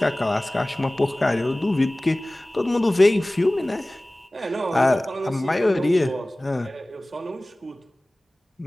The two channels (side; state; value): both; normal; correlation 0.98